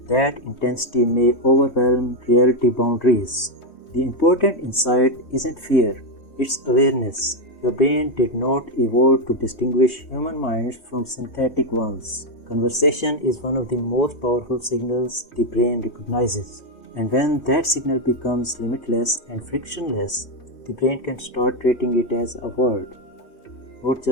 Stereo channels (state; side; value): late; right; 3.2 ms